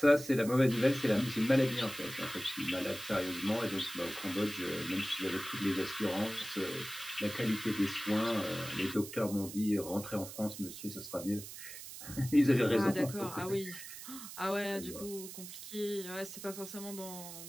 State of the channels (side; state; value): right; noise; hiss, 11 dB below the sound